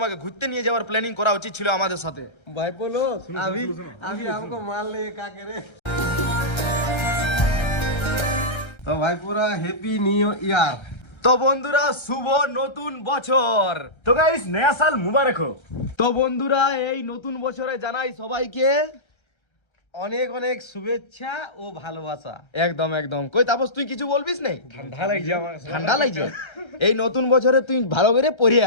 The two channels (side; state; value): right; late; 1.3 ms